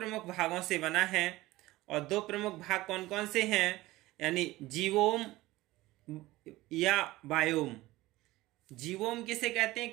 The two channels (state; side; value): quieter; left; 18.3 dB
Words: भागों से बना है और दो प्रमुख भाग कौन कौन से हैं, यानी जीवोम या बायोम। जीवोम किसे कहते हैं,